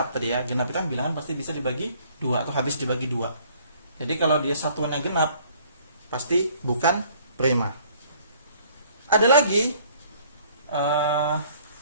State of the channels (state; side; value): inverted; both; correlation -0.58